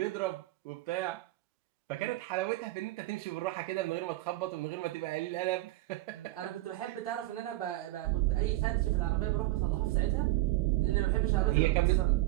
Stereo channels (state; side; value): quieter; left; 18.0 dB